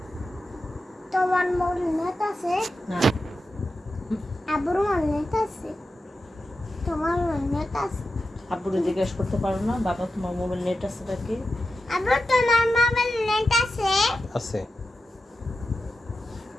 তোমার মোর নেট আছে না আবুর মোর নেট আছে তোমার নেট আছে আব্বুরে জিজ্ঞেস করতে পারো না বাবা তোমার মোবাইল নেট আছে নাকি আবু তোমার মোবাইল নেট আছে আছে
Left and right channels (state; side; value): normal; both; correlation 0.91